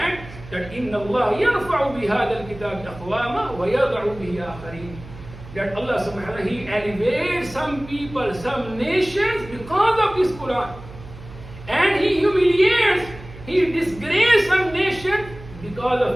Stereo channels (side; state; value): right; noise; hum, 16 dB below the sound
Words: that إن الله يرفع بهذا الكتاب أقواما ويضع به آخرين. That Allah subhanahu wa ta'ala, he elevates some people, some nations because of this Quran. And he humiliates, he disgraces some nation because